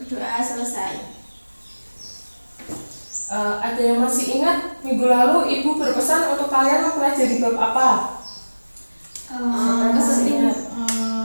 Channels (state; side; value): inverted; both; correlation -1.00